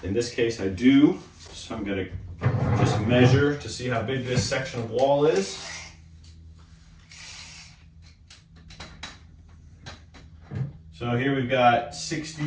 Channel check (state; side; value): identical; both; correlation 1.00